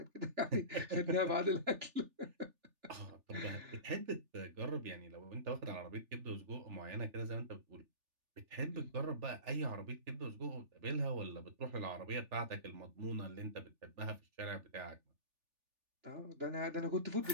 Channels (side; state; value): left; late; 3.4 ms